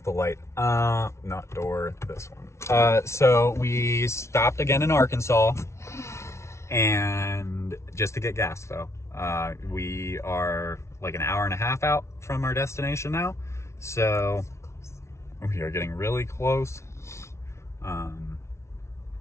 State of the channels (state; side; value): late; right; 0.13 ms